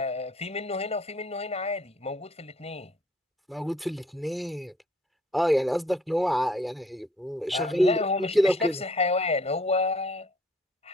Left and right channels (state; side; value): normal; both; correlation 0.60